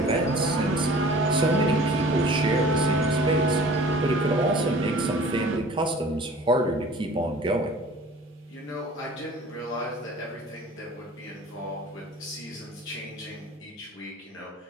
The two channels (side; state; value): both; normal; correlation 0.46